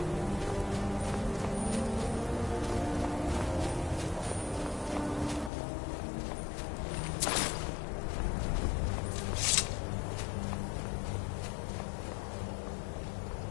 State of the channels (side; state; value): right; drops out; at 5.5 s